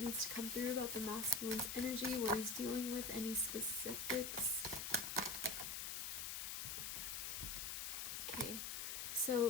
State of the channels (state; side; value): noise; left; hiss, 3 dB below the sound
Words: to come through about the masculine's energy, what he's dealing with, any specifics? Okay,